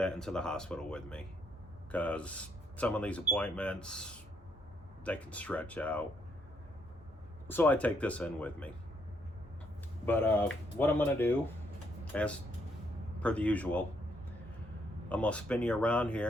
into the hospital with me because some of these appointments, they can stretch out. So I take this in with me. But what I'm gonna do, as per the usual, I'm gonna spin you around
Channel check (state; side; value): normal; both; correlation 0.72